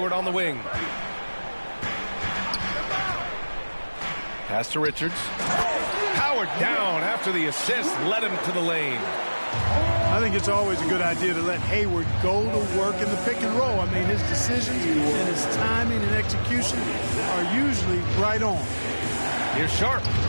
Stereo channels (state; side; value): inverted; both; correlation -1.00